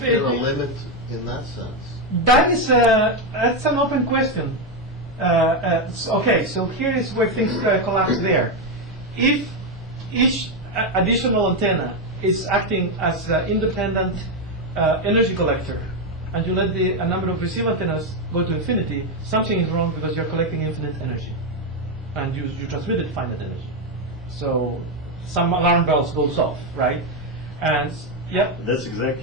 be. there a limit in that sense? That is that's an open question. Okay, so here is where things collapse there. If each additional antenna is acting as an independent energy collector, and you let a number of receiver antennas go to infinity, something is wrong because you're collecting infinite energy, and you transmitted finite energy. So some alarm bells goes off, right? And yeah. That's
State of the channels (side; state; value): both; normal; correlation 0.06